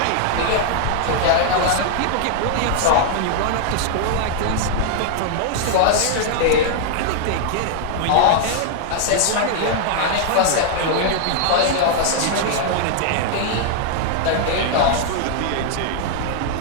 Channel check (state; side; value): different; both; correlation 0.00